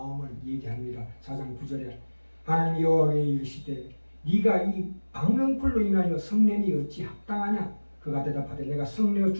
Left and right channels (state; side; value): inverted; both; correlation -1.00